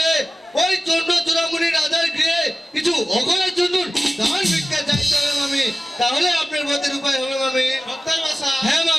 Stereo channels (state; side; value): normal; both; correlation 0.95